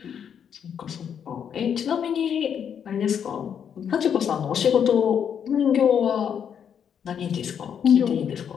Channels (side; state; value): right; quieter; 8.1 dB